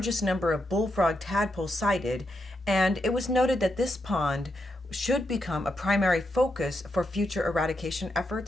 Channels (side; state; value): both; normal; correlation 0.83